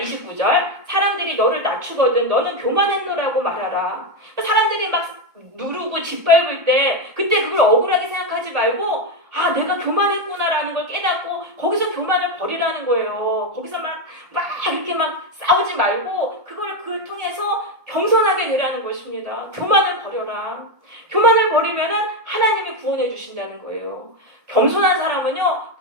사람들이 너를 낮추거든 너는 교만했노라고 말하라. 사람들이 막 누르고 짓밟을 때 그때 그걸 억울하게 생각하지 말고 아, 내가 교만했구나라는 걸 깨닫고 거기서 교만을 버리라는 거예요. 거기서 막 이렇게 막 싸우지 말고 그걸 통해서 겸손하게 되라는 것입니다. 교만을 버려라. 교만을 버리면은 하나님이 구원해 주신다는 거예요. 겸손한 사람은요,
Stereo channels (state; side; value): late; left; 1.8 ms